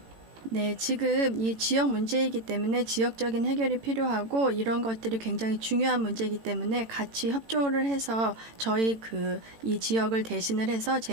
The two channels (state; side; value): late; left; 18 ms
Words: 네, 지금 이 지역 문제이기 때문에 지역적인 해결이 필요하고 이런 것들이 굉장히 중요한 문제이기 때문에 같이 협조를 해서 저희 이 지역을 대신을 해서